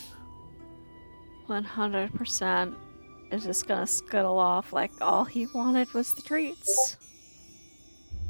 100% is just gonna scuttle off like all he wanted was the treats.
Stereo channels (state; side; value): inverted; both; correlation -1.00